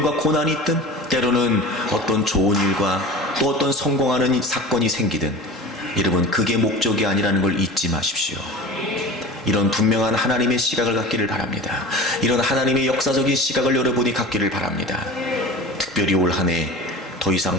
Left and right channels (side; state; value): both; normal; correlation 0.35